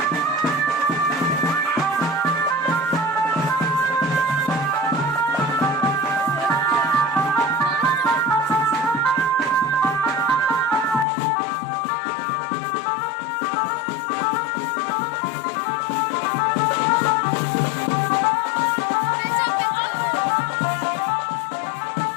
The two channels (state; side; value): drops out; right; at 11.1 s